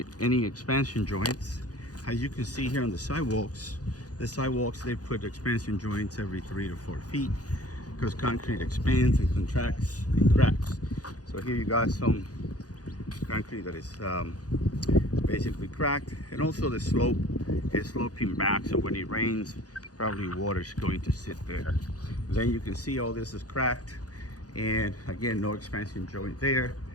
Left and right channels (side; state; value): right; late; 0.68 ms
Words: any expansion joints. As you can see here on the sidewalks they put expansion joints every 3 to 4 feet because concrete expands and contracts and cracks. So here you got some concrete that is basically cracked, and also the slope is sloping back, so when it rains probably water is going to sit there. Then you can see all this is cracked, and again, no expansion joint there,